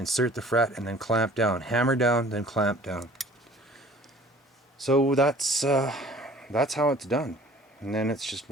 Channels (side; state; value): both; normal; correlation 0.50